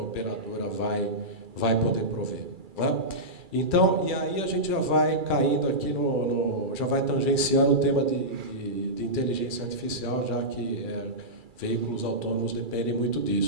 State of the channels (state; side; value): late; left; 2.3 ms